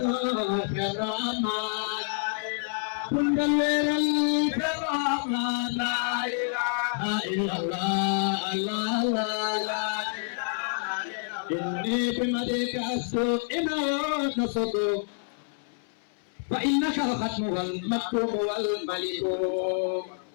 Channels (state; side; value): silent; right; 59 dB below the other